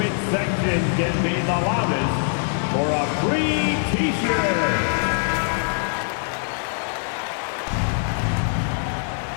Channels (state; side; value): silent; right; 63 dB below the other